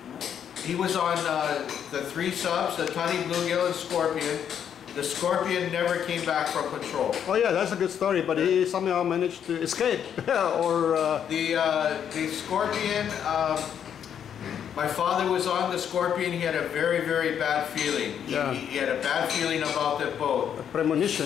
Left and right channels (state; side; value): quieter; right; 8.7 dB